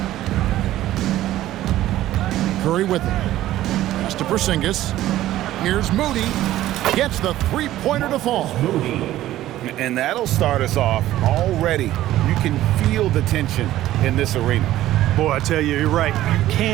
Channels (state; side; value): quieter; left; 14.3 dB